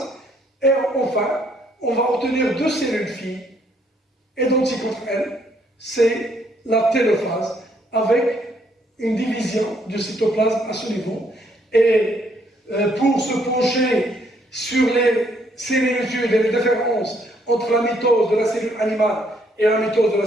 Et enfin, on va obtenir deux cellules filles identiques entre elles, c'est la télophase, avec une division du cytoplasme à ce niveau. Et pour se pencher sur les similitudes et les différences entre la mitose de la cellule animale et la mitose de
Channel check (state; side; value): normal; both; correlation 0.69